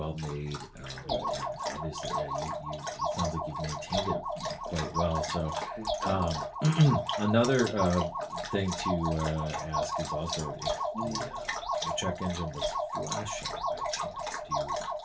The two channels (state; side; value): identical; both; correlation 1.00